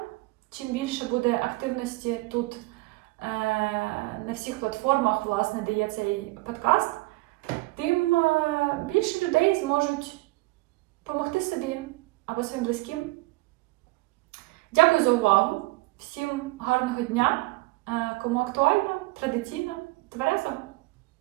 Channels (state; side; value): quieter; left; 22.7 dB